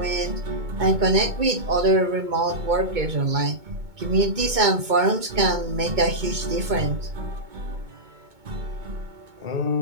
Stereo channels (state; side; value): late; left; 2.2 ms